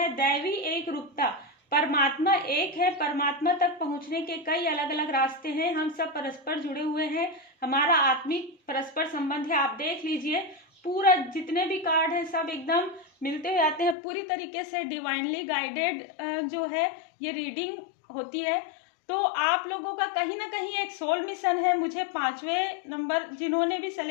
दैवी एक रूपता, परमात्मा एक है। परमात्मा तक पहुंचने के कई अलग अलग रास्ते हैं। हम सब परस्पर जुड़े हुए हैं, हमारा आत्मिक परस्पर संबंध है। आप देख लीजिए, पूरा जितने भी कार्ड हैं सब एकदम मिलते हुए आते हैं। पूरी तरीके से डिवाइनली गाइडेड जो है ये रीडिंग होती है। तो आप लोगों का कहीं ना कहीं एक सोल मिशन है। मुझे 5वें नंबर जिन्होंने भी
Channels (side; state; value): right; drops out; at 14.0 s